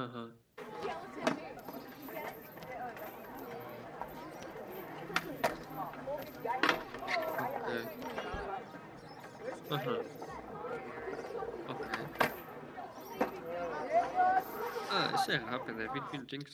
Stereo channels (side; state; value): both; identical; correlation 1.00